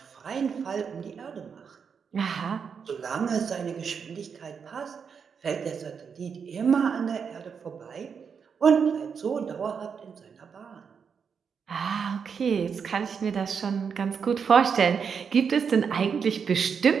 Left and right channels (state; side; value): quieter; left; 6.5 dB